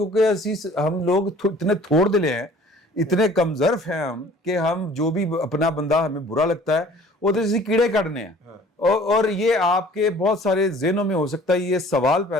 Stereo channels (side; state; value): both; normal; correlation 0.51